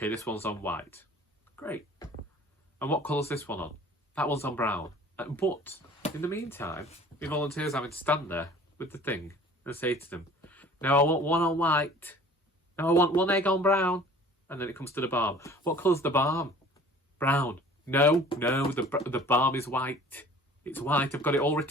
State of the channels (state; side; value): normal; both; correlation 0.48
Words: this one's on white. Great. And what colour's this one on? That one's on brown. But in the meantime, the volunteers having to stand there with the thing and say to them, no, I want one on white. No, I want one egg on brown. And then it comes to the balm. What colour's the balm? Brown. No, the balm is white. It's white. I've got it all